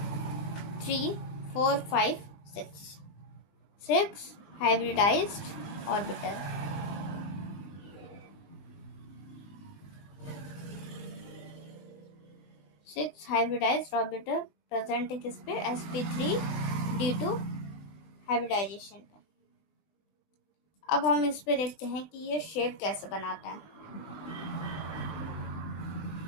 3 4 5 6 hybridised orbital. Six hybridised orbital present है किस पे, sp3d2 हाइब्रिडाइजेशन पे। अब हम इस पे देखते हैं कि ये शेप कैसे बनाता है।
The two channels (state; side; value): late; right; 20 ms